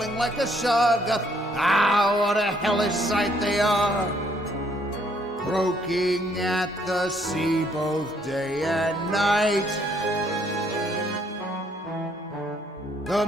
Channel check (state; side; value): normal; both; correlation 0.68